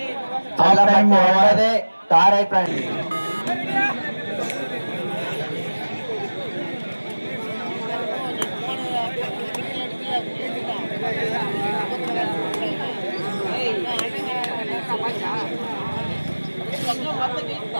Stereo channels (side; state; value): both; inverted; correlation -1.00